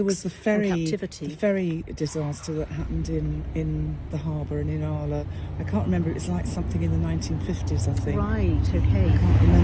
was the and captivity. the ferry disaster that happened in the harbour and in Qala. I can't remember. It was like something in the 1950s, I think. Right. Okay. I can't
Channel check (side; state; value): both; identical; correlation 1.00